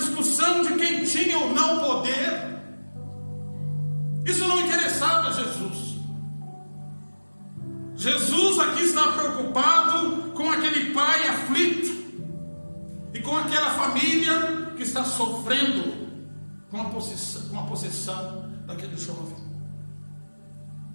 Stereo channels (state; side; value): inverted; both; correlation -1.00